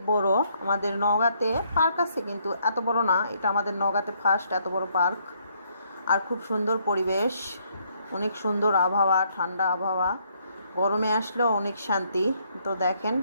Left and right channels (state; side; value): inverted; both; correlation -0.70